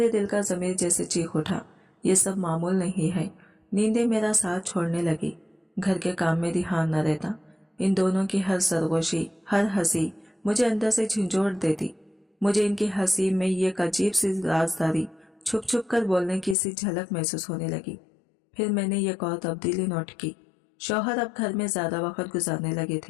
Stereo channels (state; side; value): drops out; right; at 16.6 s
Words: दिल का ज़मीर जैसे चीख उठा, ये सब मामूल नहीं है। नींदें मेरा साथ छोड़ने लगी, घर के काम में ध्यान न रहता। इन दोनों की हर सरगोशी, हर हंसी मुझे अंदर से झंझोड़ देती। मुझे इनकी हंसी में ये एक अजीब सी राजदारी, छुप छुप कर बोलने की सी झलक महसूस होने लगी। फिर मैंने ये और तब्दीली नोट की। शौहर अब घर में ज्यादा वक्त गुजारने लगे